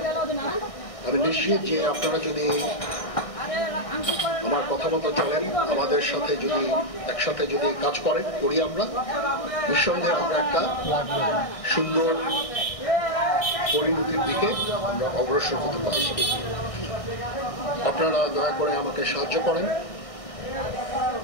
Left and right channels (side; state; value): right; late; 1.6 ms